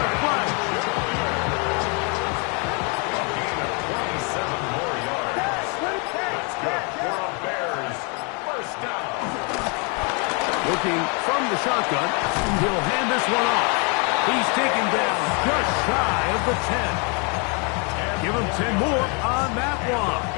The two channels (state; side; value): quieter; right; 34.3 dB